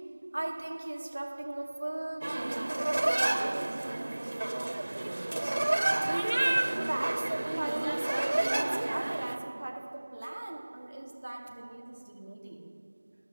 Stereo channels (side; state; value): both; inverted; correlation -1.00